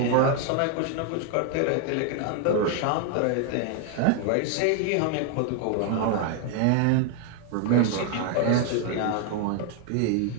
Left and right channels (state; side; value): different; both; correlation 0.01